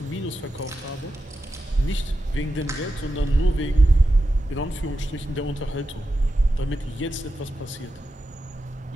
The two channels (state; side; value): normal; both; correlation 0.89